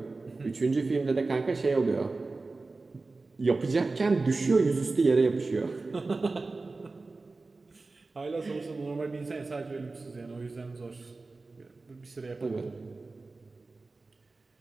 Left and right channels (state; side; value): quieter; left; 3.6 dB